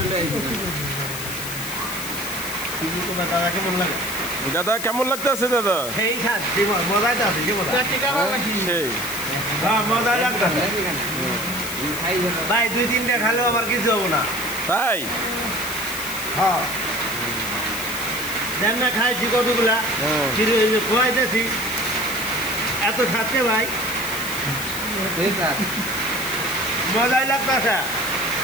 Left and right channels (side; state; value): left; noise; hiss, 7 dB below the sound